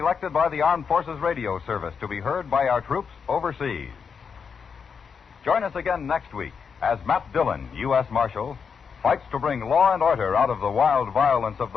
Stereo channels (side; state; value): right; quieter; 6.2 dB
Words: by the Armed Forces Radio Service to be heard by our troops overseas. Join us again next week as Matt Dillon, U.S. Marshal, fights to bring law and order out of the wild violence of